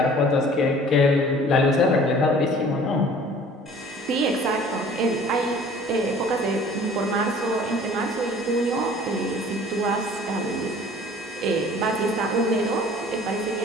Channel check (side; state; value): both; normal; correlation 0.49